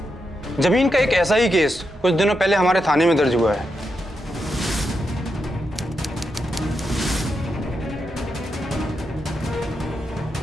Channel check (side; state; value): both; normal; correlation 0.85